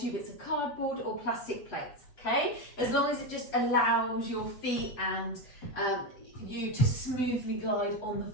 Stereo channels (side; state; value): right; late; 7.7 ms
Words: bits of cardboard or plastic plates, okay? As long as it just allows your feet and you to smoothly glide on the